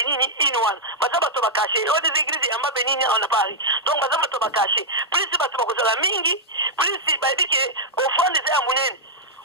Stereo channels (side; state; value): both; normal; correlation -0.06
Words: ine wana baza bato bakache oyo des églises yamba benini na Paris donc baza bato bakache plus bato bakozala mingi plus bayebi ke offrande eza ya monene